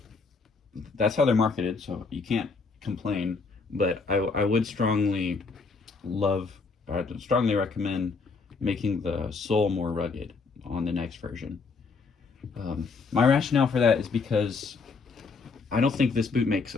that's how they're marketed, so you can't complain, but I would strongly recommend making the sole more rugged on the next version. My rationale for that is because I don't think this boot makes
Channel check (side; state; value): right; quieter; 4.5 dB